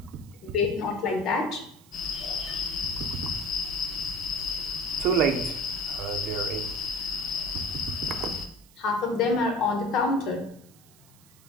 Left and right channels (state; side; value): noise; right; hiss, 26 dB below the sound